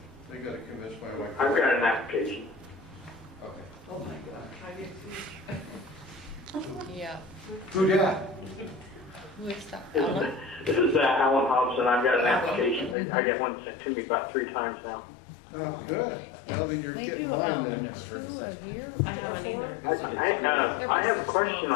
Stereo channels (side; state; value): right; drops out; at 13.0 s